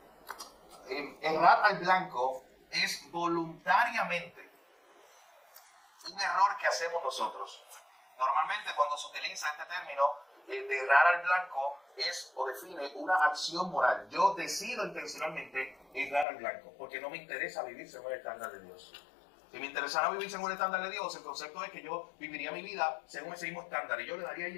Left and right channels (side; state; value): right; drops out; at 16.2 s